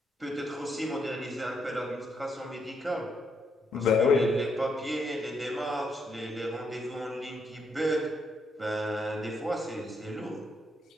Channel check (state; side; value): normal; both; correlation 0.76